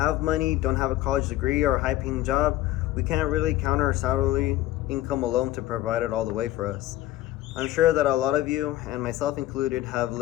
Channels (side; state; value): right; quieter; 15.0 dB